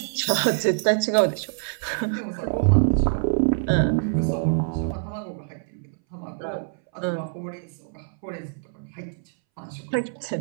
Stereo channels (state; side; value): silent; left; 62 dB below the other